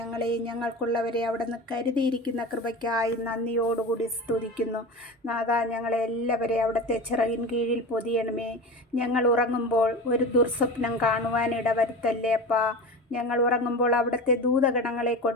ഞങ്ങൾക്കുള്ളവരെ അവിടെ നിന്ന് കരുതിയിരിക്കുന്ന കൃപയ്ക്കായി നന്ദിയോടുകൂടി സ്തുതിക്കുന്നു. നാഥാ, ഞങ്ങളെ എല്ലാവരെയും അവിടുത്തെ ചിറകിൻ കീഴിൽ പൊതിയണമേ. ഞങ്ങൾ ഉറങ്ങുമ്പോൾ ഒരു ദുർസ്വപ്നം കാണുവാൻ ഇടവരുത്തല്ലേ അപ്പാ. ഞങ്ങൾ ഉറങ്ങുമ്പോൾ അവിടുത്തെ ദൂതഗണങ്ങളെ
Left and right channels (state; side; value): normal; both; correlation 0.29